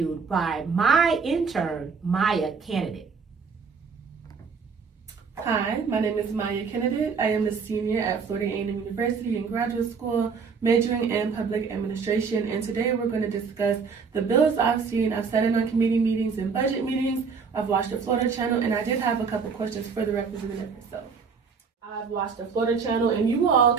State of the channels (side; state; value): left; quieter; 5.5 dB